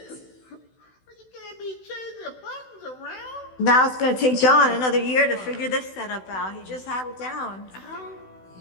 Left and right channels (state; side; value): late; right; 16 ms